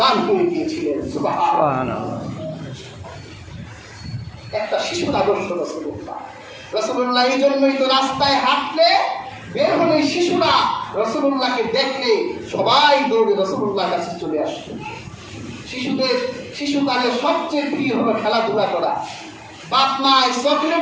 হয়ে গিয়েছিলেন। সুবহানাল্লাহ। একটা শিশুর আদর্শ রাসূলুল্লাহ। এই জন্যই তো রাস্তায় হাঁটলে বের হলে শিশুরা রাসূলুল্লাহকে দেখলে সবাই দৌড়ে রাসূলুল্লাহর কাছে চলে আসতো। শিশুকালের সবচেয়ে প্রিয় হলো খেলাধুলা করা। বাপ মায়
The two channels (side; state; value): both; identical; correlation 1.00